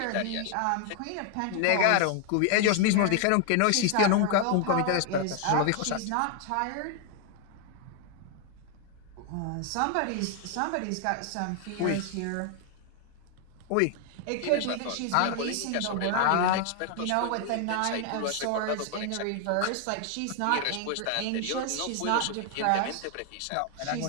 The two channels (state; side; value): different; both; correlation 0.00